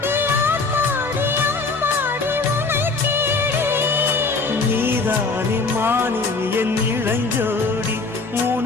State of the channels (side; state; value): right; quieter; 4.0 dB